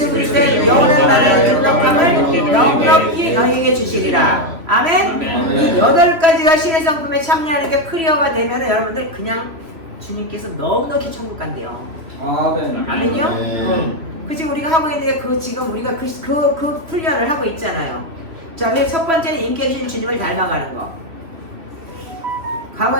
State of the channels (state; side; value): late; left; 3.0 ms